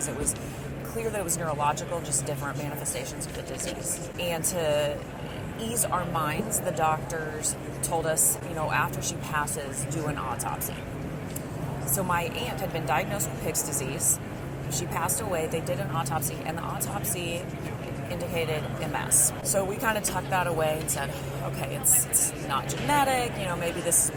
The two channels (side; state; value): both; identical; correlation 1.00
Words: it was clear that it was neurological, just different manifestations of the disease. And to ease our minds, the doctors told us, after she passes, do an autopsy. So my aunt had been diagnosed with Pick's disease. She passed away, they did an autopsy, and the autopsy indicated MS. So we kind of tucked that away and said, okay, it's not genetic, maybe this will